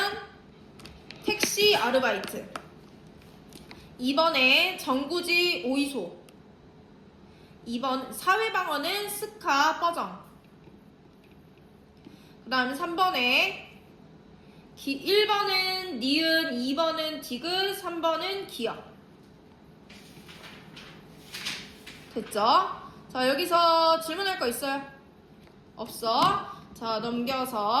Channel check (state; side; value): identical; both; correlation 1.00